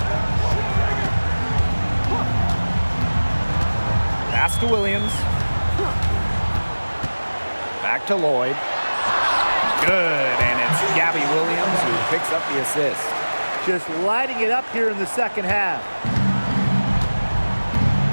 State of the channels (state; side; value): inverted; both; correlation -1.00